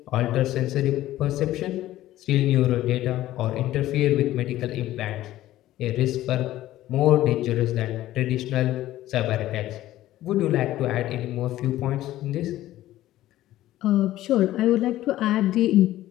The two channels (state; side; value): quieter; right; 14.7 dB